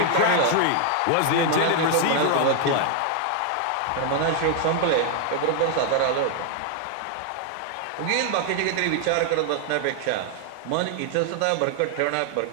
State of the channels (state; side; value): different; both; correlation 0.00